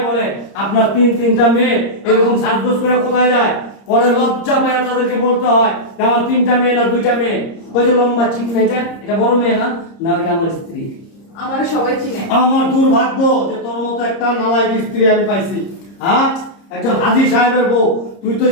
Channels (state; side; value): late; right; 30 ms